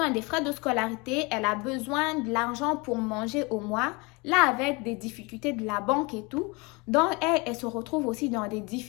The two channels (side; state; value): right; quieter; 27.3 dB